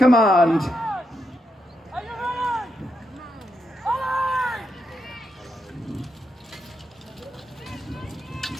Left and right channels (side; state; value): both; normal; correlation 0.83